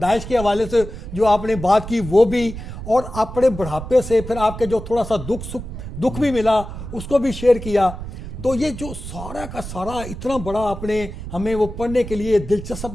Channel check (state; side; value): noise; right; rumble, 10 dB below the sound